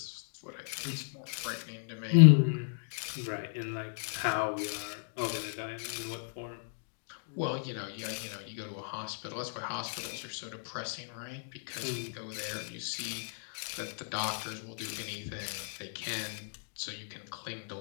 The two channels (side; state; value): right; silent; digital silence